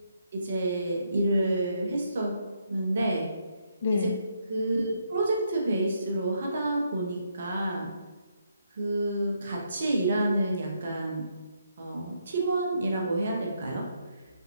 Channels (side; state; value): both; inverted; correlation -0.76